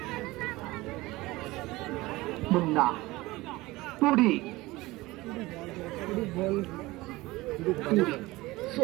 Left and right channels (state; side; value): quieter; left; 20.0 dB